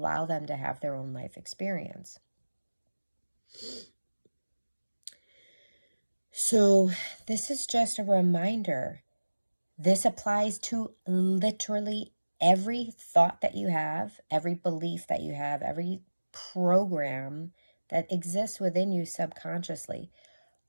them to have their own life experience. So this is just a reminder. This applies to literally every thought that you have, every belief that you have, every program that exists within you subconsciously.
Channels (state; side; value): inverted; both; correlation -1.00